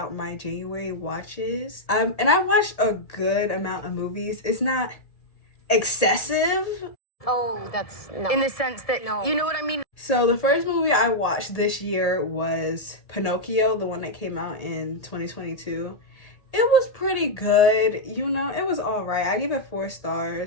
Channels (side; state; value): right; late; 1.8 ms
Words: my January watches. And I watched a good amount of movies. It's not excessive. Oh, that's no. In the sense that, no. You know what I mean? So the first movie I watched this year was Pinocchio, the one that came out in 2022. It was pretty good, you know, it was all right. I give it 4